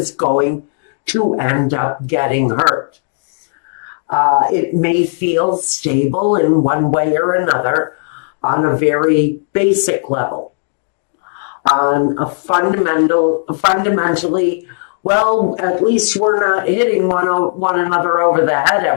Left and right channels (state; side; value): silent; right; digital silence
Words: going to end up getting hurt. It may feel stable in one way or another on a very basic level. On a fundamentally, well, at least we're not hitting one another over the head